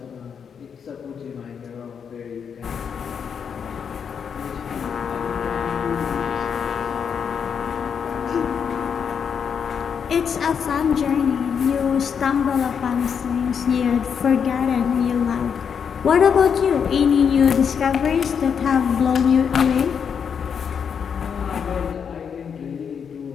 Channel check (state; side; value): quieter; right; 7.0 dB